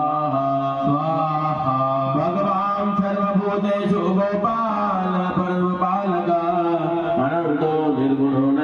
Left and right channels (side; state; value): both; identical; correlation 1.00